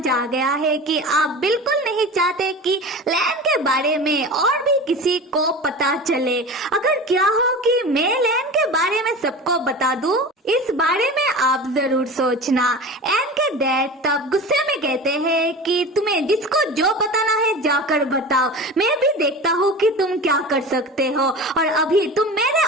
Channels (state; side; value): normal; both; correlation 0.32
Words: आ गया है कि आप बिल्कुल नहीं चाहते कि लैन के बारे में और भी किसी को पता चले। अगर क्या हो कि मैं लैन के बारे में सबको बता दूं, इस बारे में आप जरूर सोचना। एन के डैड तब गुस्से में कहते हैं कि तुम्हें जिसको जो बताना है जाकर बताओ, मैं भी देखता हूँ कि तुम क्या कर सकते हो, और अभी तुम मेरे